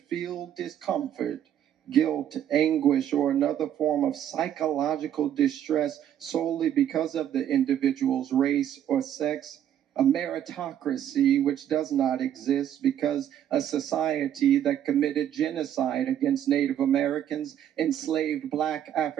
discomfort, guilt, anguish, or another form of psychological distress solely because of the individual's race or sex. A meritocracy which does not exist because a society that committed genocide against Native Americans, enslaved Black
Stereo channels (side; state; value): left; quieter; 10.4 dB